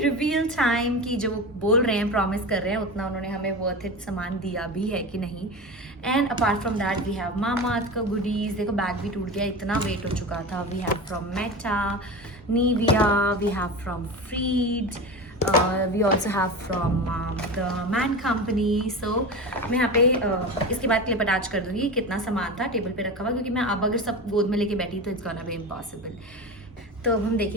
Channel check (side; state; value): both; normal; correlation 0.27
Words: reveal time कि जो बोल रहे हैं, प्रॉमिस कर रहे हैं, उतना उन्होंने हमें वर्थ इट सामान दिया भी है कि नहीं. And apart from that we have Mamaearth का गुडीज़. देखो बैग भी टूट गया, इतना वेट हो चुका था. We have from Meta, Nivea, we have from Freed, we also have from the Man Company. So मैं यहाँ पे इसके बाद क्लिप अटैच कर दूँगी कितना सामान था टेबल पे रखा हुआ, क्योंकि मैं अब अगर सब गोद में लेके बैठी तो इट्स गोना बी इम्पॉसिबल. तो अब हम